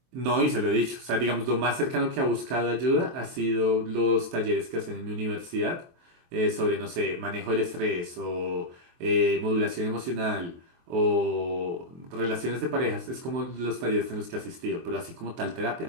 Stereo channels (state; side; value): late; left; 23 ms